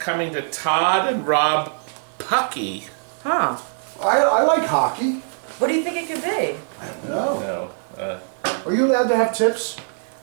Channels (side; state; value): left; silent; 60 dB below the other